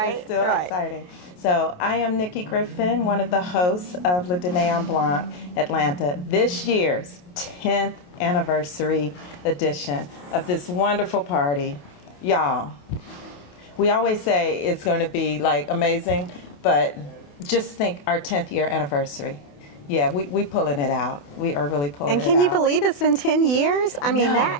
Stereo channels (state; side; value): late; right; 28 ms